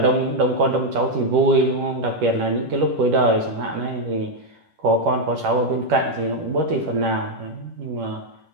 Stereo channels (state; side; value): late; left; 10 ms